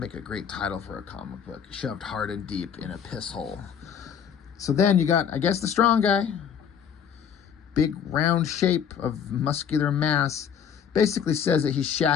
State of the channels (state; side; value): quieter; right; 7.9 dB